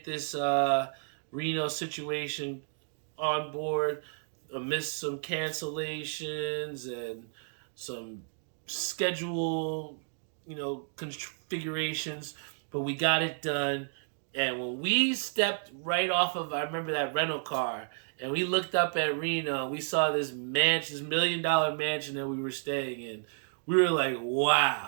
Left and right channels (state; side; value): silent; left; digital silence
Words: this Reno situation on board amidst some cancellations and some schedule configurations, but we got it done. And when we stepped right off of, I remember that rental car, and we looked up at Reno, we saw this mansion, this $1 million mansion that we were staying in. We were like,